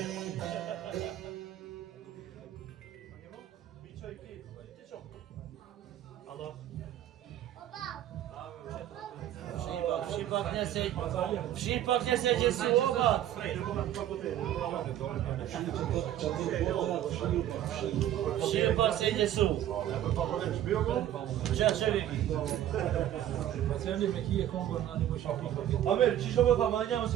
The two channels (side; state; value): left; quieter; 11.9 dB